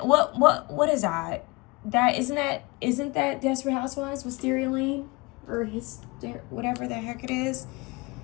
What is that? isn't that Desperate Housewives with Stereo Lane? Or whatever the heck it is.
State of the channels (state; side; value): quieter; right; 25.6 dB